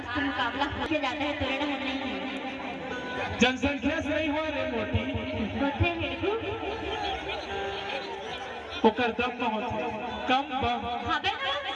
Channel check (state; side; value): identical; both; correlation 1.00